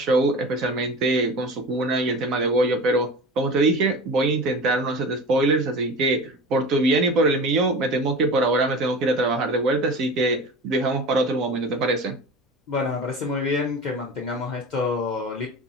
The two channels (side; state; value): both; normal; correlation 0.33